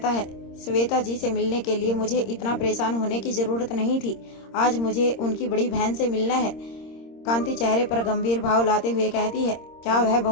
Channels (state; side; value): late; right; 26 ms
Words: है, श्वेता जी से मिलने के लिए मुझे इतना परेशान होने की जरूरत नहीं थी। आज मुझे उनकी बड़ी बहन से मिलना है। कांति चेहरे पर गंभीर भाव लाते हुए कहती है, क्या वह